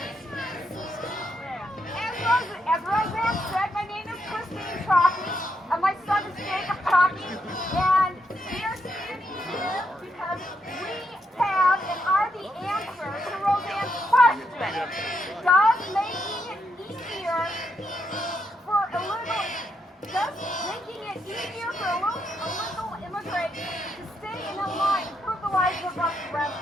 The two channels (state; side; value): normal; both; correlation 0.79